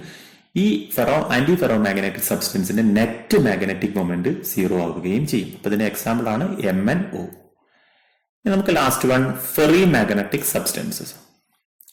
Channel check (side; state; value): both; identical; correlation 1.00